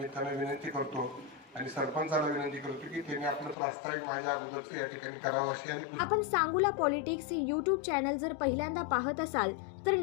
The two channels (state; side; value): drops out; right; at 3.6 s